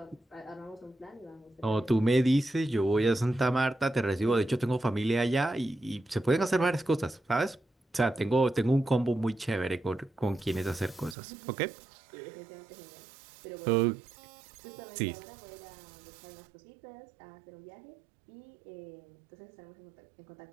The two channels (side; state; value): left; drops out; at 11.2 s